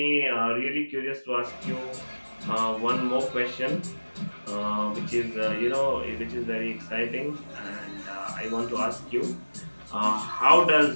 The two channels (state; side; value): inverted; both; correlation -1.00